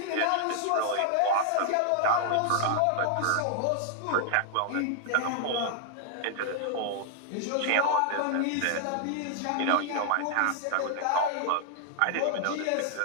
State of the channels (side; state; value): both; different; correlation -0.01